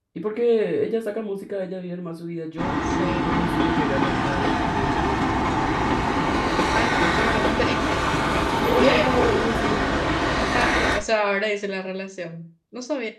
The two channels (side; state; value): both; identical; correlation 1.00